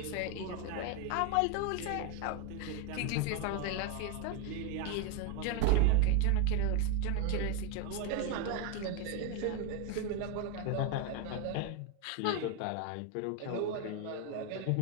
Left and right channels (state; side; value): different; both; correlation 0.02